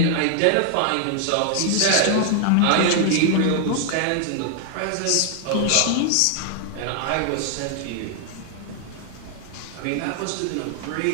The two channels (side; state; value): both; different; correlation 0.00